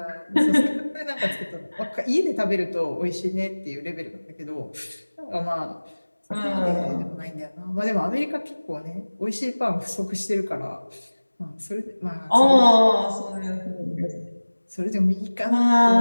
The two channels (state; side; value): inverted; both; correlation -1.00